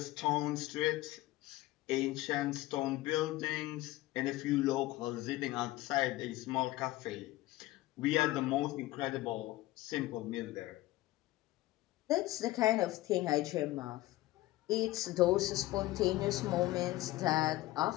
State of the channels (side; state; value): right; quieter; 17.4 dB